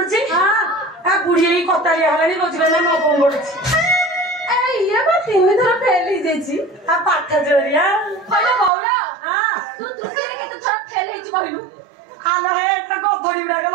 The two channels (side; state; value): left; drops out; at 8.7 s